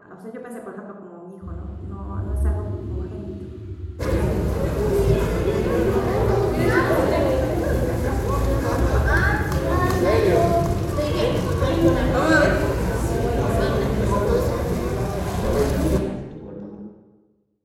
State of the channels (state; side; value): identical; both; correlation 1.00